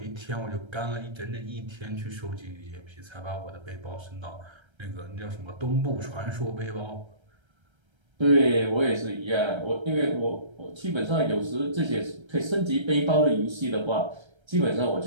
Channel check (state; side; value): late; left; 1.3 ms